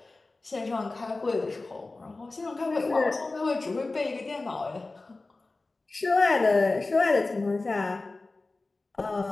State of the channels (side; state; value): right; quieter; 3.3 dB